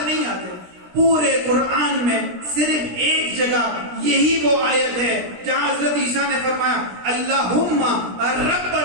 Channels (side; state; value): left; late; 17 ms